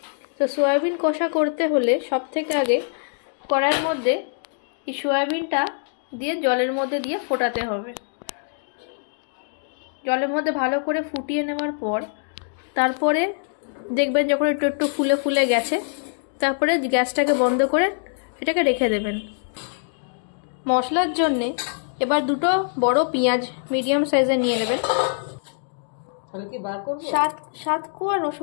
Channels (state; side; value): silent; right; digital silence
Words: তো সয়াবিন কষা করতে হলে সব থেকে আগে কড়াইয়ের মধ্যে এই সয়াবিনটা দিয়ে জলের মধ্যে দিয়ে ফোটাতে হবে। জলের মধ্যে ভালো করে ফুটিয়ে নেওয়ার পর তারপরে দেখবেন যখন একটু একটু ফুলে ফুলে গেছে, তারপরে গ্যাসটাকে বন্ধ করে এটাকে রেখে দেবেন। মশলার জন্যে এবার দুটো বড় পেঁয়াজ মিডিয়াম সাইজে নিয়ে নেবেন। সাত কোয়া